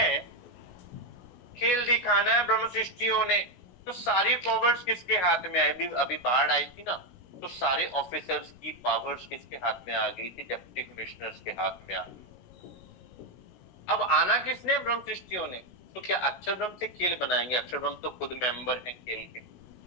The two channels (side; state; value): right; late; 17 ms